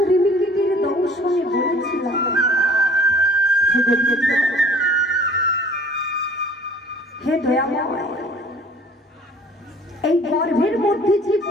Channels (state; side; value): normal; both; correlation 0.50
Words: দংশনে বলেছিলাম হে দয়াময়, এই গর্ভের মধ্যে যে